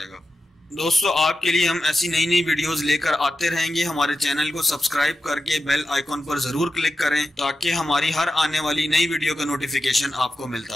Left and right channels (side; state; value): both; normal; correlation 0.91